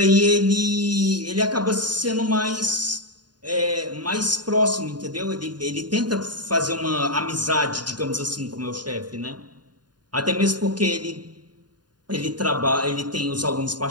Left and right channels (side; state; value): left; late; 0.70 ms